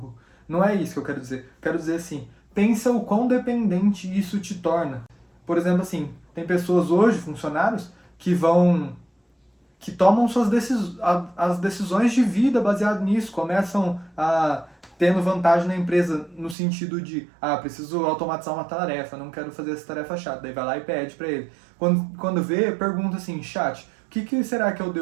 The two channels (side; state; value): left; drops out; at 16.6 s